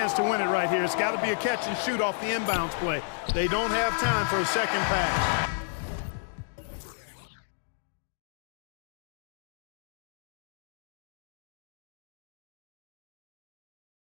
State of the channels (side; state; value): right; silent; digital silence